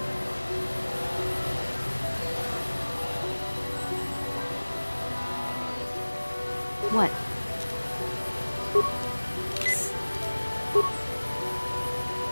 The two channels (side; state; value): both; inverted; correlation -1.00